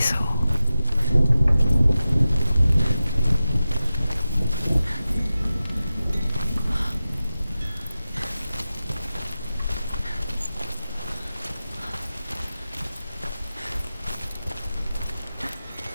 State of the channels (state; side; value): inverted; both; correlation -0.94